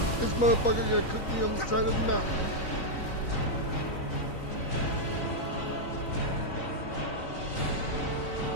This motherfucker gonna cook me on the side of the mountain.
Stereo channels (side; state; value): right; late; 3.9 ms